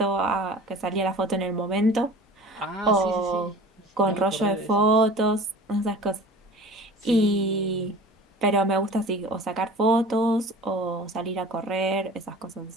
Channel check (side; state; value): both; normal; correlation 0.41